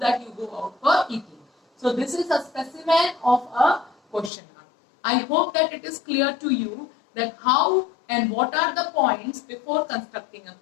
you go out for eating? So this is a specimen of a questionnaire. I hope that it is clear to you that how and what are the points before constructing a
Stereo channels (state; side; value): drops out; right; at 4.3 s